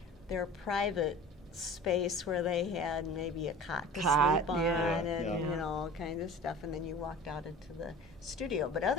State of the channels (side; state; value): both; normal; correlation 0.41